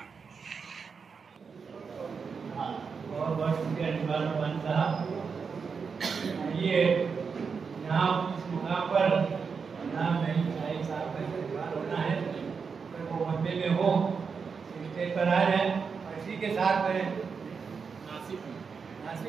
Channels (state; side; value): quieter; left; 5.6 dB